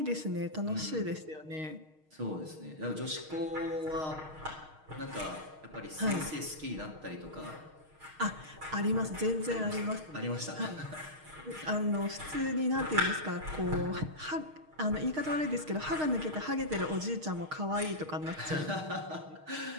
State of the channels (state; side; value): late; left; 6.4 ms